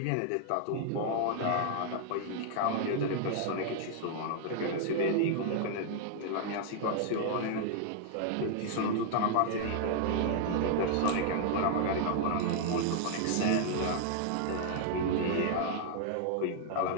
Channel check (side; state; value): both; different; correlation -0.01